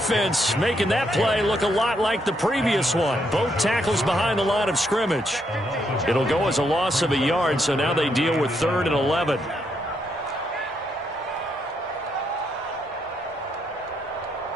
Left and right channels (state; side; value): normal; both; correlation 0.77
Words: making that play look a lot like the previous one. Both tackles behind the line of scrimmage. It'll go as a loss of a yard, so now they deal with 3rd and 11.